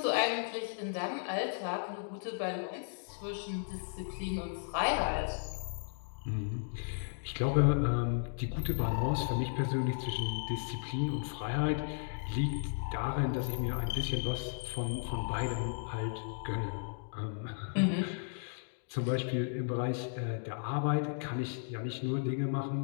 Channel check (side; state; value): right; silent; digital silence